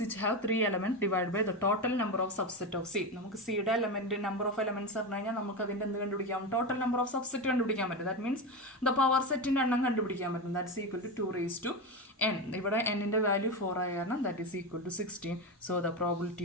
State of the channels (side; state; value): both; normal; correlation 0.17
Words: which have 3 elements divided by the total number of subset of C. നമുക്ക് സിയുടെ എലമെന്റ് നമ്പർ ഓഫ് എലമെന്റ്സ് പറഞ്ഞു കഴിഞ്ഞാൽ നമുക്ക് അതിൻ്റെ എന്ത് കണ്ടുപിടിക്കാം? ടോട്ടൽ നമ്പർ ഓഫ് സബ്സെറ്റ് കണ്ടുപിടിക്കാൻ പറ്റും. ദാറ്റ് മീൻസ് ദ പവർ സെറ്റിൻ്റെ എണ്ണം കണ്ടുപിടിക്കാൻ പറ്റും. That's equal to 2⁴n. ഇവിടെ എന്നിൻ്റെ വാല്യൂ 4 ആയ കാരണം that is equal to 16. So the